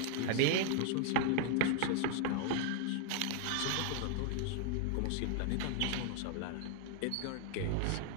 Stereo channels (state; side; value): different; both; correlation 0.00